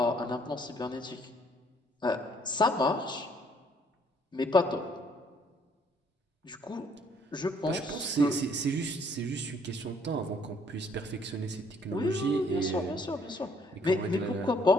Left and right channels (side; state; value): both; normal; correlation 0.64